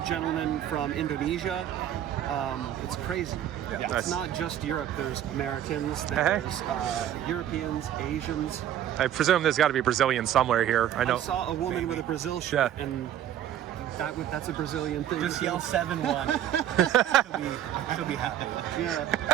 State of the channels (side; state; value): left; quieter; 11.0 dB